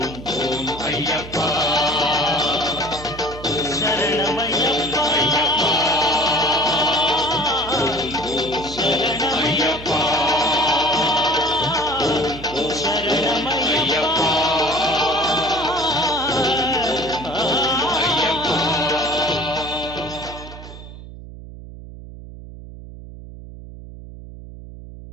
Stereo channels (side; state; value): right; noise; hum, 14 dB below the sound